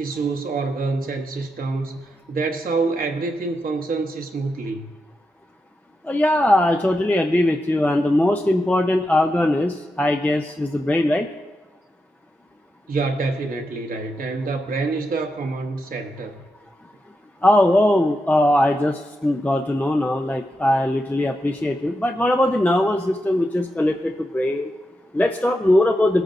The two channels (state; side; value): normal; both; correlation 0.86